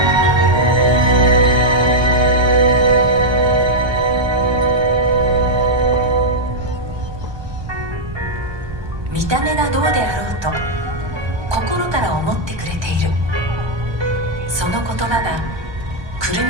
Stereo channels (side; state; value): left; late; 1.2 ms